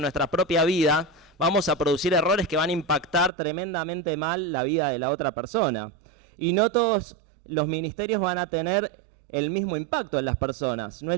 nuestra propia vida, vamos a producir errores que van a impactar tremendamente mal la vida de la otra persona. Y no todos los ministerios van a tener el mismo impacto en las personas. No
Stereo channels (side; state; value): left; drops out; at 3.3 s